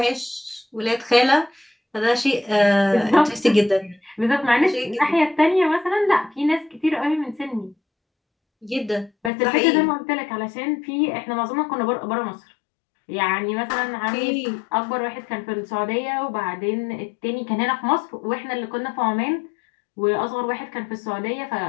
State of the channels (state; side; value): drops out; right; at 9.3 s